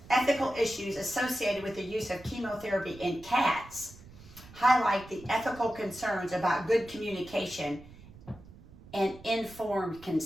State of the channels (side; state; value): right; noise; rumble, 20 dB below the sound